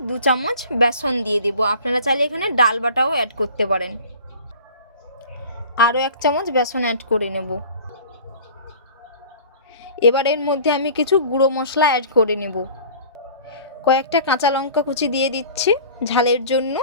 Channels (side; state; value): both; inverted; correlation -0.43